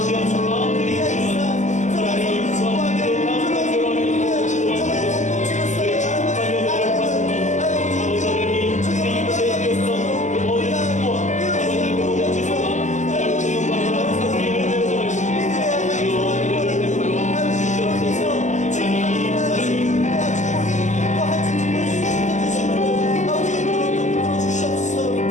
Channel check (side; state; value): right; late; 0.34 ms